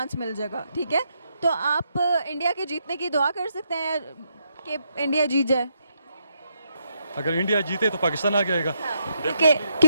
मिल जाएगा, ठीक है। तो आप इंडिया के जीतने की दुआ कर सकते हैं कि इंडिया जीत जाए। अगर इंडिया जीते तो पाकिस्तान आ जाएगा।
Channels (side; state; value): both; inverted; correlation -0.77